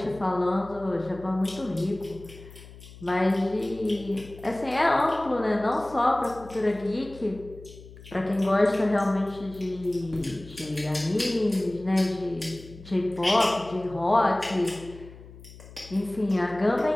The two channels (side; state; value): left; noise; hum, 18 dB below the sound